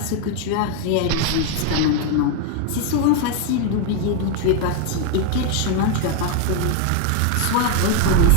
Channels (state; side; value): different; both; correlation 0.01